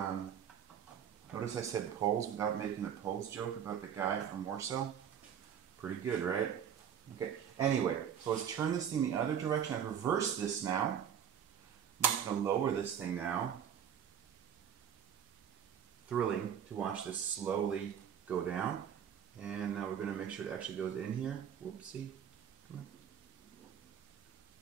notice I said poles without making the poles joke about the guy from Warsaw. Pretty good, right? Okay, anyway, so let's turn this thing the other direction. I've reversed this now. I'm just going to lower this thing now. Thrilling to watch this slowly go down. And now we're going to make sure it actually goes in here. Whoopsie. Come on.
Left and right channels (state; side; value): quieter; left; 8.7 dB